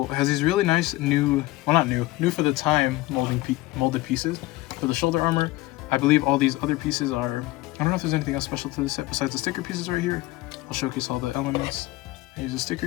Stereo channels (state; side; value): quieter; right; 18.7 dB